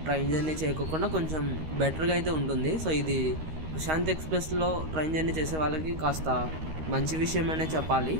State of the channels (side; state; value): left; late; 13 ms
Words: ట్రైన్ జర్నీ చేయకుండా కొంచెం బెటర్గా అయితే ఉంటుంది. సో ఇది ప్రశాంత్ ఎక్స్ప్రెస్లో ట్రైన్ జర్నీ చేసే వాళ్ళకి కాస్త మంచి విషయమనే చెప్పాలి.